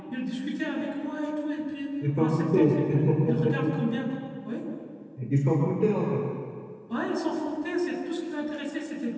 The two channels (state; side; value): identical; both; correlation 1.00